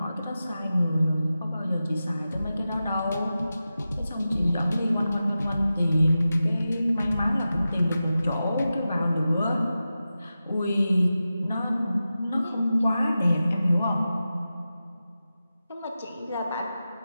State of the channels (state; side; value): inverted; both; correlation -0.93